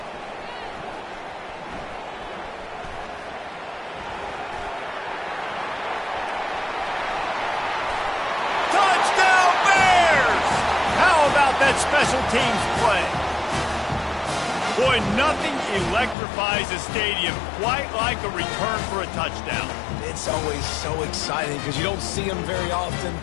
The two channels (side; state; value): right; drops out; at 16.2 s